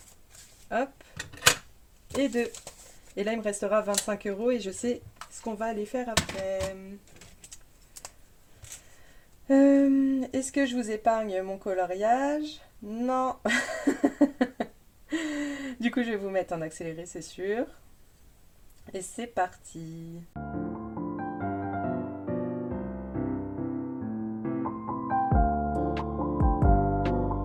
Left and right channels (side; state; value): both; identical; correlation 1.00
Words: Hop. Et 2. Et là, il me restera 25 euros et je sais ce qu'on va aller faire après. Est-ce que je vous épargne mon coloriage? Non. Du coup, je vais vous mettre en accéléré, c'est sûr. Et c'est parti.